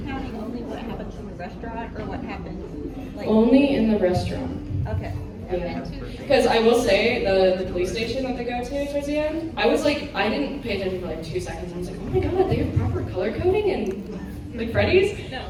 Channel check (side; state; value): both; identical; correlation 1.00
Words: only what happens in the restaurant or what happens? Like, Only in the restaurant. okay. Because I will say, the police station that they go to towards the end, I was like, I didn't pay attention for like 2 seconds. I was like, oh my god, they have proper color coding in like Freddy's? No.